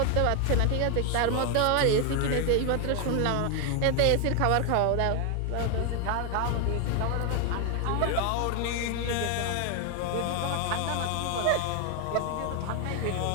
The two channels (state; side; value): different; both; correlation 0.01